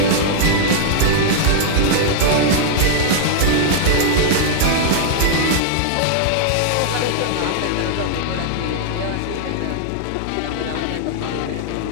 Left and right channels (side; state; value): both; different; correlation -0.01